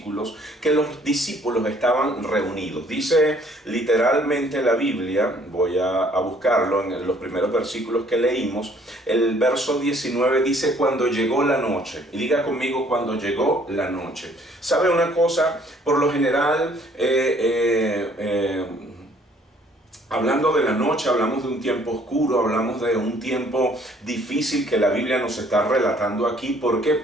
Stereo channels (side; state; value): both; normal; correlation 0.60